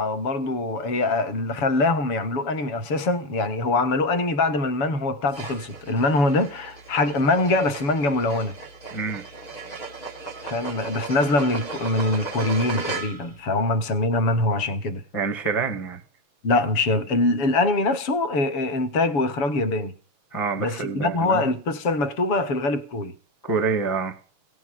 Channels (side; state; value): right; late; 7.0 ms